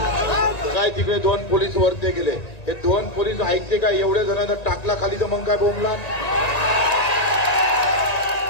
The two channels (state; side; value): late; right; 1.9 ms